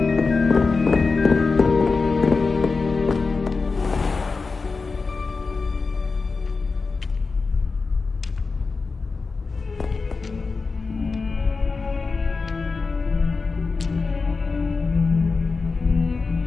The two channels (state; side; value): quieter; right; 4.3 dB